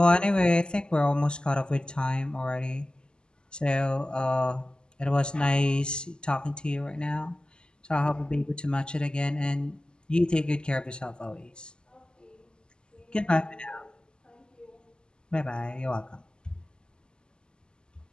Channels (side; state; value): right; late; 0.048 ms